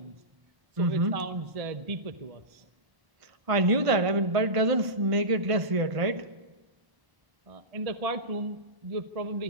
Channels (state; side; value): late; left; 1.5 ms